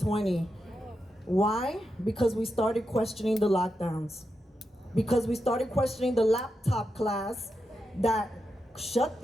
Why? Because we started questioning the lockdowns. Because we started questioning the laptop class that shut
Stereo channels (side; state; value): both; normal; correlation 0.87